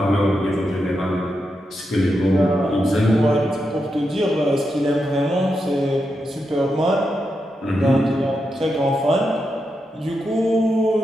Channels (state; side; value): normal; both; correlation 0.86